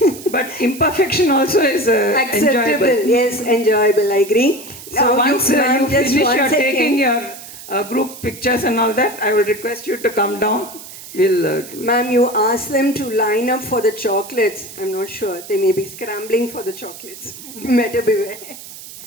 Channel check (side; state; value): right; noise; hiss, 15 dB below the sound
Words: But imperfection also is Acceptable. enjoyable. Yes, enjoyable. I agree. So once ma'am, you just finish one your second. taking your group pictures and all that, I will request you to come down. We'll Ma'am, you ask them to line up for the chocolates. I'm not sure. They may be scrambling for the chocolates. Better beware.